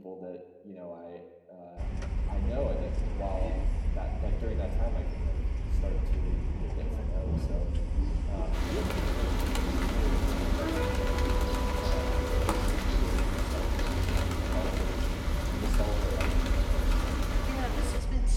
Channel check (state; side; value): identical; both; correlation 1.00